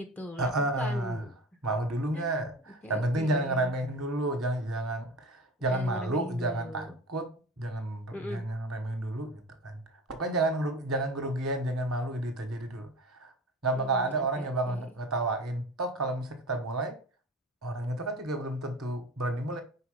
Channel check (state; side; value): normal; both; correlation 0.35